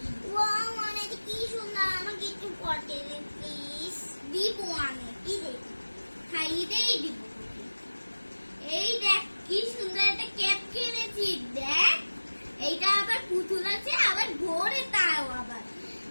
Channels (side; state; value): both; inverted; correlation -1.00